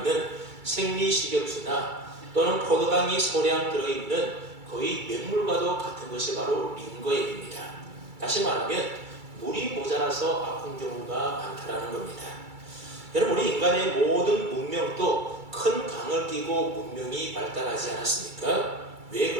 생리식염수나 또는 포도당이 소량 들어있는 거의 맹물과도 같은 것이 바로 링거액입니다. 다시 말하면 물이 모자라서 아픈 경우가 많다는 겁니다. 여러분, 우리 인간의 모든 문명도 큰 강을 끼고 문명이 발달하지 않았습니까? 왜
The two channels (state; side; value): late; left; 2.3 ms